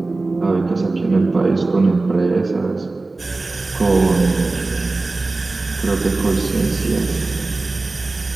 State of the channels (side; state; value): left; quieter; 3.3 dB